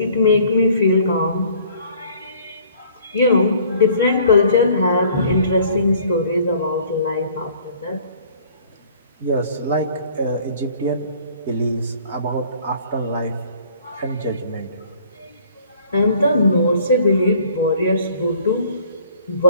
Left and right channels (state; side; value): inverted; both; correlation -0.55